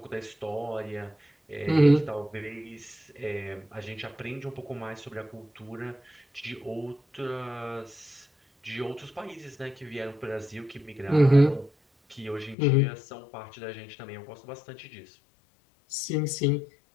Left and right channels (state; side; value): drops out; right; at 12.6 s